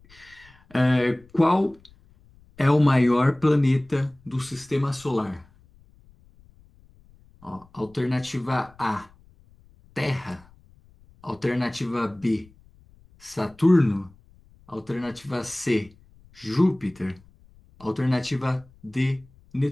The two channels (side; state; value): left; noise; rumble, 28 dB below the sound